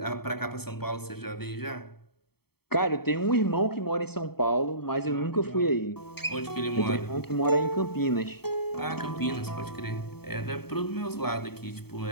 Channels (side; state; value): right; late; 0.96 ms